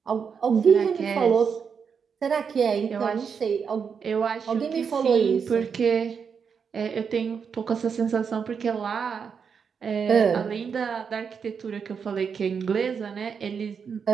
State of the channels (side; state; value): left; quieter; 6.4 dB